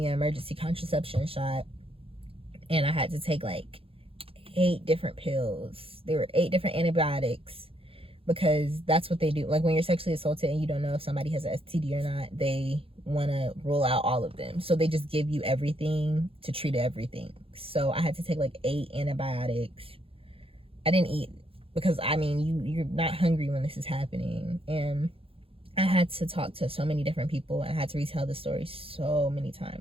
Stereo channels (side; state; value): left; late; 0.27 ms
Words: an emergency contraception shot, and I had to take like 8 different pills. There were 8 different antibiotics, because that's what they do. Like, when you're sexually assaulted and you don't know if somebody has an STD or not, they want to rule out all of them, so they just give you everything to treat everything. So I had to take like 8 antibiotics. I didn't eat because, I mean, you're not hungry when this is happening, and I had to talk to so many different people. I had to retell the story so many